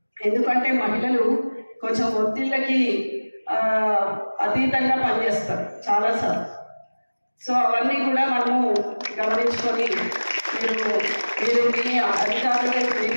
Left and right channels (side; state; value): both; inverted; correlation -1.00